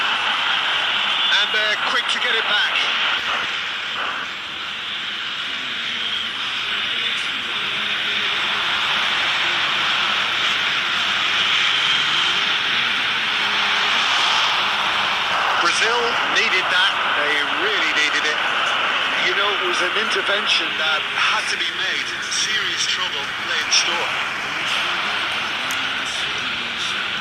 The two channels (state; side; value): identical; both; correlation 1.00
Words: And they're quick to get it back. Brazil needed that. They really needed it. You know, it was an intervention that had to be made. Serious trouble lay in store.